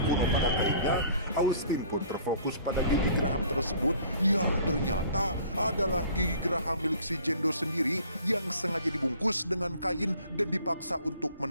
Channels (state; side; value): inverted; both; correlation -0.52